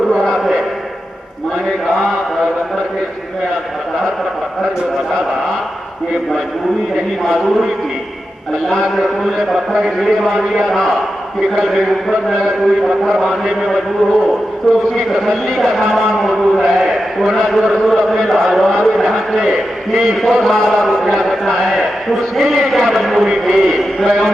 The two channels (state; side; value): normal; both; correlation 0.90